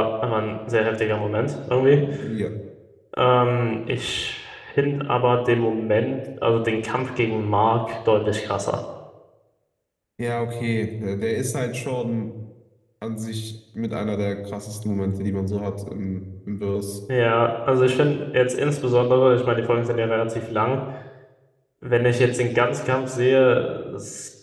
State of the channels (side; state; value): both; identical; correlation 1.00